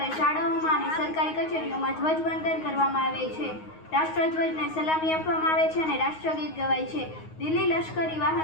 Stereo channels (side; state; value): right; late; 9.5 ms